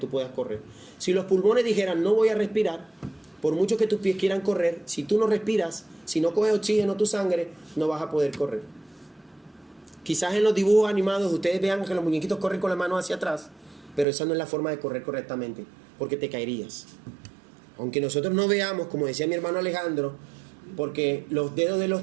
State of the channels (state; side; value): drops out; left; at 14.1 s